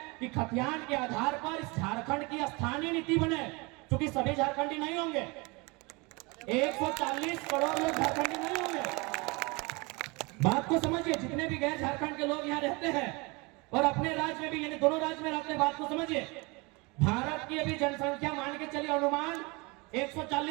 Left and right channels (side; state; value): left; quieter; 26.9 dB